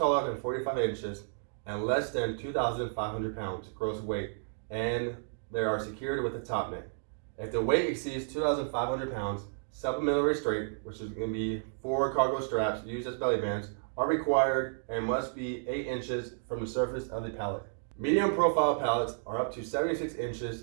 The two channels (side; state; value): left; silent; digital silence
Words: than 45 inches and less than 2,500 pounds gross weight, and they are secured with a top net. If the weight exceeds 2,500 pounds, supplemental restraint, which is going to be 4 cargo straps used as belly bands, are required and must be 8 inches from the surface of the pallet. Medium profile pallets are up to 76